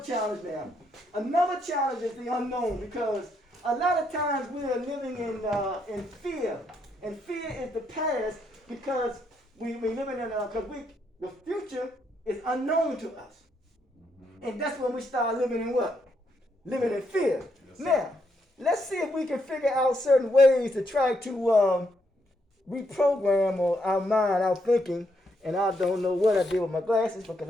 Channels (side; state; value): both; normal; correlation 0.76